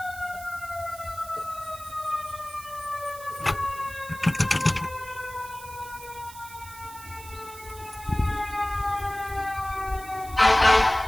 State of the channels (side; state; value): right; noise; hiss, 16 dB below the sound